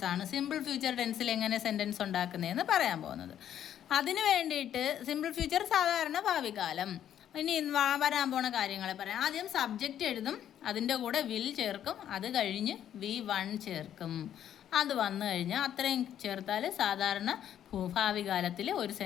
ആണ്. സിമ്പിൾ ഫ്യൂച്ചർ ടെൻസിൽ എങ്ങനെ സെൻറ്റൻസ് ഉണ്ടാക്കുന്നതെന്ന് പറയാൻ പോകുന്നത്. അതിന് വേണ്ടിയിട്ട് സിമ്പിൾ ഫ്യൂച്ചർ സാധാരണ ഭാവികാലം. ഇനി വരാൻ പോണ കാര്യങ്ങളെ പറയാം. ആദ്യം സബ്ജക്റ്റ് എഴുതും, അതിൻ്റെ കൂടെ വിൽ ചേർക്കും, അത് കഴിഞ്ഞ് V1 ചേർക്കും. അത് വന്നു കഴിഞ്ഞാൽ അത്രയും ചേർത്താൽ സാധാരണ ഭാവികാലത്തിൽ ഒരു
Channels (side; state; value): right; quieter; 10.3 dB